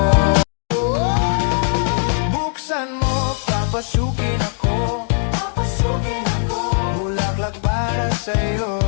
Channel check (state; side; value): silent; right; 56 dB below the other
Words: Buksan mo, papasukin ako. Bulaklak para sa'yo.